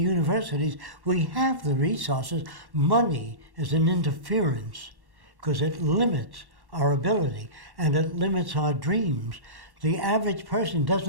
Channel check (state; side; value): late; left; 1.1 ms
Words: We have the resources. Money is an interference because it limits our ability and it limits our dreams. The average person